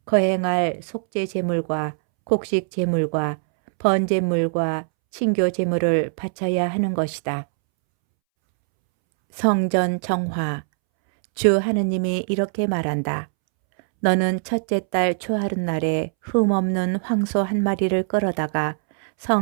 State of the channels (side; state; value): left; silent; 64 dB below the other